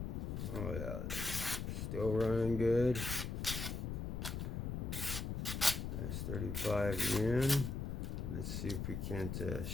Oh yeah, still running good. That's 35 yen. Let's see if we can't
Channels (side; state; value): left; noise; rumble, 3 dB below the sound